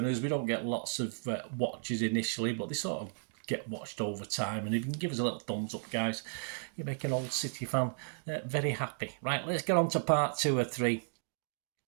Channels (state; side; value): silent; left; digital silence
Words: We don't get lots of watches initially, but they sort of get watched over time. And if you can give us a little thumbs up, guys, you make an old City fan very happy. Right, let's get on to part two or three.